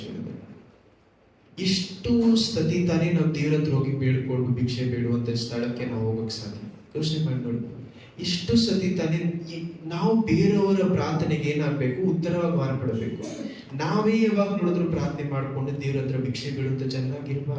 ಇಷ್ಟು ಸತಿ ತಾನೇ ನಾವು ದೇವರ ಹತ್ರ ಹೋಗಿ ಬೇಡ್ಕೊಂಡು ಭಿಕ್ಷೆ ಬೇಡುವಂತ ಸ್ಥಳಕ್ಕೆ ನಾವು ಹೋಗಕ್ಕೆ ಸಾಧ್ಯ. ಯೋಚನೆ ಮಾಡಿ ನೋಡಿ, ಇಷ್ಟು ಸತಿ ತಾನೇ ನಾವು ಬೇರೆಯವರ ಪ್ರಾರ್ಥನೆಗೆ ಏನಾಗಬೇಕು, ಉತ್ತರವಾಗಿ ಮಾರ್ಪಡಬೇಕು. ನಾವೇ ಯಾವಾಗ ನೋಡಿದ್ರು ಪ್ರಾರ್ಥನೆ ಮಾಡಿಕೊಂಡು ದೇವರ ಹತ್ರ ಭಿಕ್ಷೆ ಬೇಡುವಂತ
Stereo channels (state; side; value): identical; both; correlation 1.00